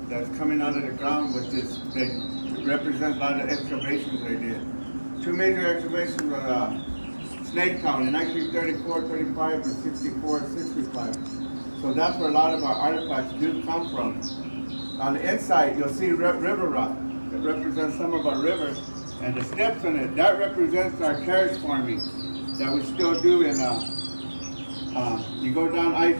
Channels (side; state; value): both; inverted; correlation -1.00